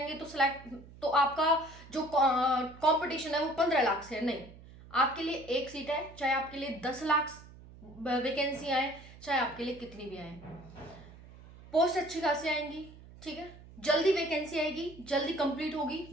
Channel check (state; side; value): noise; right; hum, 19 dB below the sound